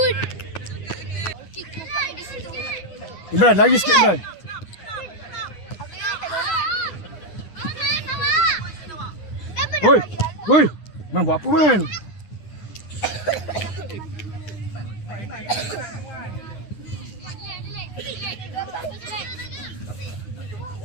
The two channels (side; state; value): right; late; 10 ms